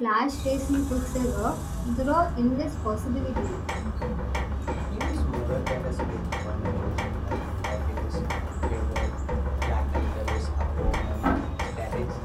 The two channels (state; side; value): identical; both; correlation 1.00